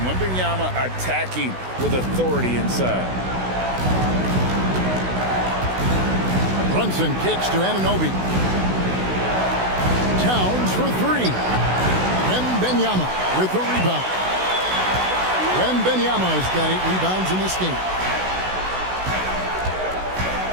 Wembanyama attacking with authority inside. Brunson kicks to Anunoby. Towns for three. Wembanyama with the rebound. Wembanyama has got 8 rebounds in this game.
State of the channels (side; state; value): left; late; 16 ms